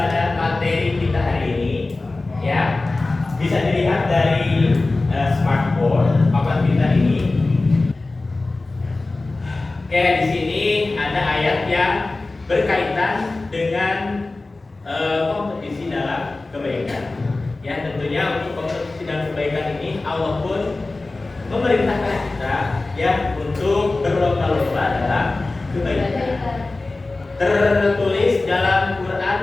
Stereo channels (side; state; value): right; quieter; 3.2 dB